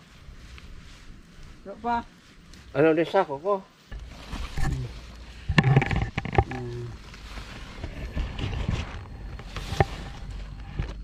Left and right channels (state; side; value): identical; both; correlation 1.00